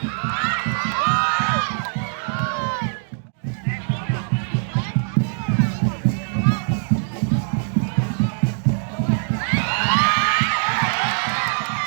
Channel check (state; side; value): silent; left; digital silence